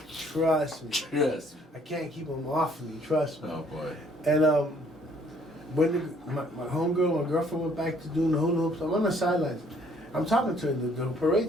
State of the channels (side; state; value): both; normal; correlation 0.62